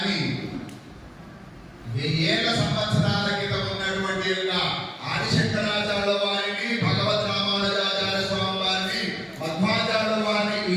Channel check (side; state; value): both; identical; correlation 1.00